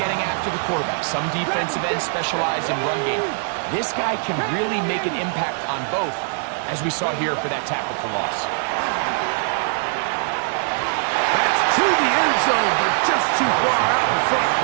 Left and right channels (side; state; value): left; silent; 64 dB below the other